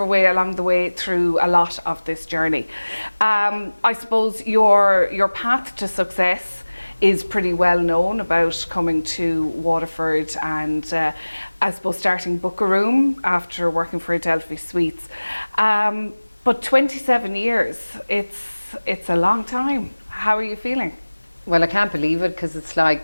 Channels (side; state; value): both; inverted; correlation -1.00